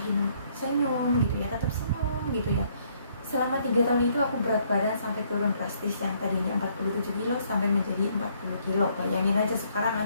senyum gitu ya, tetap senyum gitu ya. Selama 3 tahun itu aku berat badan sampai turun drastis, yang tadinya 47 kilo sampai menjadi 40 kilo. Bayangin aja sekarang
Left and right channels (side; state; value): both; inverted; correlation -0.67